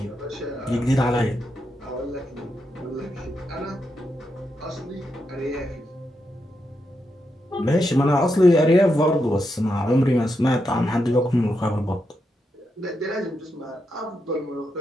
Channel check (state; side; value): normal; both; correlation 0.84